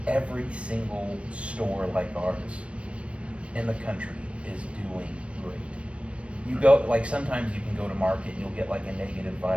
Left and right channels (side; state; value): left; late; 0.061 ms